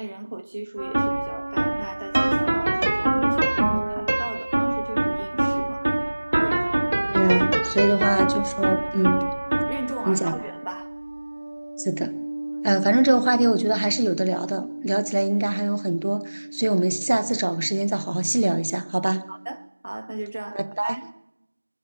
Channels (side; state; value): both; inverted; correlation -1.00